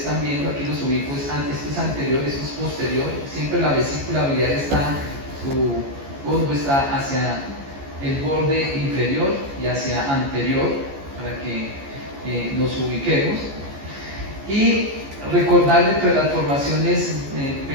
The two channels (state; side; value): late; left; 14 ms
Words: viendo, aquí los ubico, esto es anterior, esto es posterior. Siempre la vesícula biliar está, su fondo está hacia el borde inferior y hacia anterior, para que nos ubiquemos. Y recordar entre las formaciones